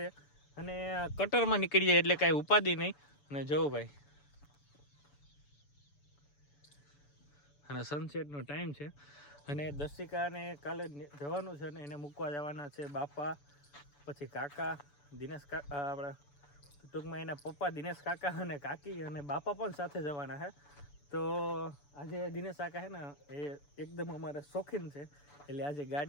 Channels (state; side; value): late; right; 7.0 ms